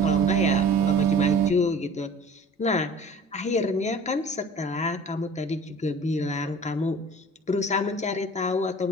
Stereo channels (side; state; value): both; normal; correlation 0.44